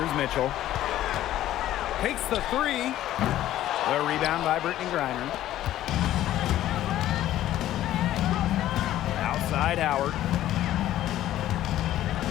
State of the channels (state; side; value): quieter; right; 13.3 dB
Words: Mitchell. Takes the three. The rebound by Brittany Griner. Outside Howard.